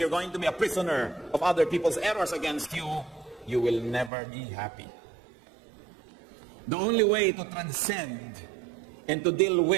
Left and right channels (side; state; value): left; drops out; at 4.1 s